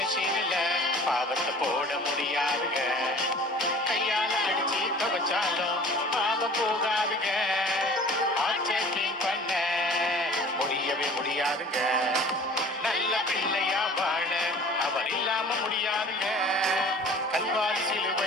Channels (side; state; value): both; normal; correlation 0.46